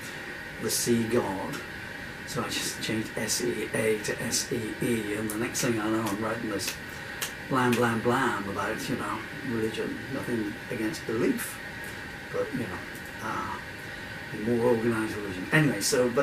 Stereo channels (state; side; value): identical; both; correlation 1.00